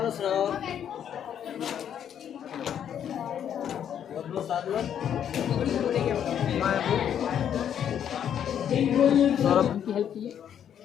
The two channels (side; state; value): right; quieter; 9.2 dB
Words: और सुनाओ सौरभ की हेल्प कीजिए